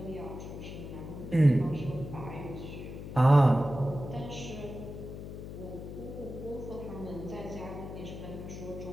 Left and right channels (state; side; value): noise; left; hum, 9 dB below the sound